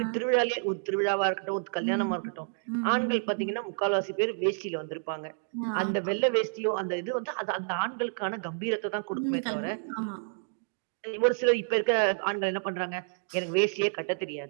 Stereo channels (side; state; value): left; silent; digital silence